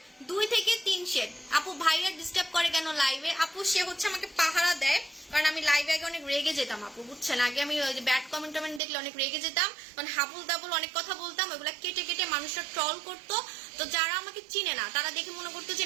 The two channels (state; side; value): drops out; left; at 8.8 s